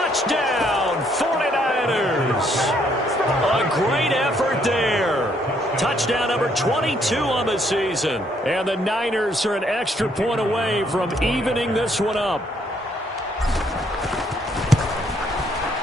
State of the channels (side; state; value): both; normal; correlation 0.69